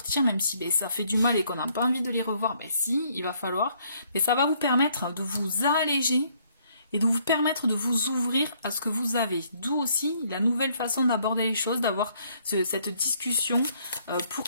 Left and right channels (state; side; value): inverted; both; correlation -0.67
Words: même si ça fait du mal et qu'on n'a pas envie de les revoir, si, il va falloir. Mais ça va vous permettre de vous alléger et de vous permettre de vous ouvrir à ce que vous avez. D'où aussi la nouvelle façon d'aborder les choses, d'avoir cette discussion pour